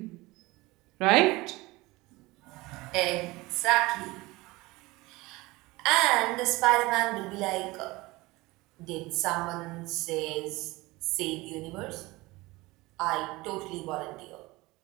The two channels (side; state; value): left; quieter; 21.3 dB